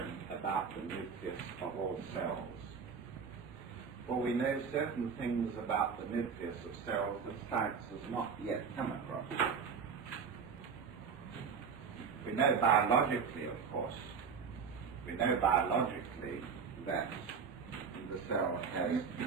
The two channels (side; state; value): left; quieter; 6.1 dB